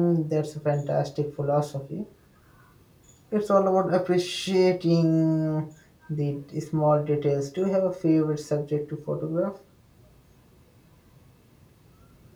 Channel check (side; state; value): both; identical; correlation 1.00